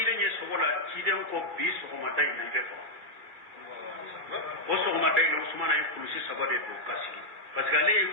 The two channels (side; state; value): left; late; 2.4 ms